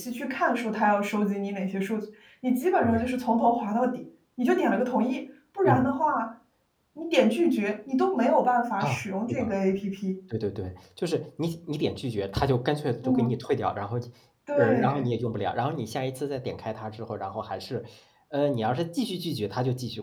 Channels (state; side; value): identical; both; correlation 1.00